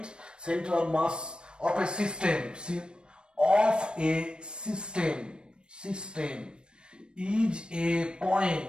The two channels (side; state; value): left; late; 0.054 ms